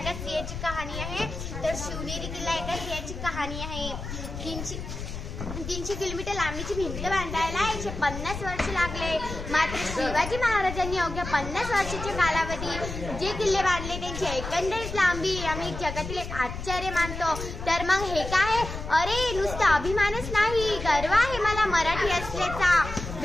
स्त्रियाची कहाणी आहे, तर शिवनेरी किल्ला एका स्त्रियाची कहाणी आहे. 300 किलोमीटर लांबीची भिंत बांधायला 150 वर्ष लागले. मात्र शिवाजी महाराजांनी अवघ्या 50 वर्षाच्या कालावधीत जे किल्ले बांधले त्यांची एकंदरीत लांबी आम्ही जगातील एक आश्चर्य मानतो. तर मग हे काय? अरे नुसतं अभिमानच नाही, गर्व आहे मला मराठी असल्याचा.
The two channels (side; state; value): left; noise; rumble, 8 dB below the sound